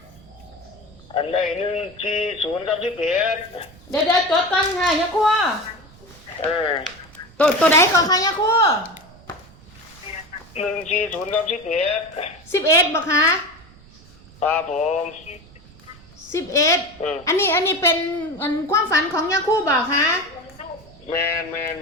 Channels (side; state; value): right; noise; rumble, 24 dB below the sound